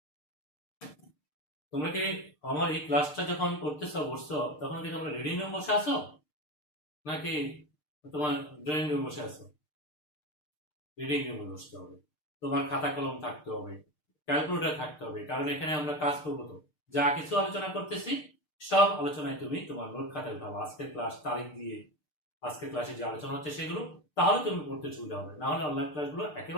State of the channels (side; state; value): right; late; 6.6 ms